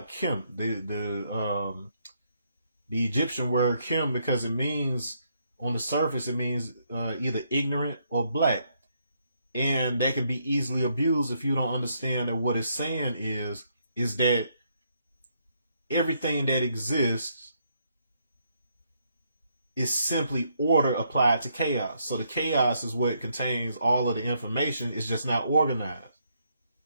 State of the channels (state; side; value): inverted; both; correlation -0.74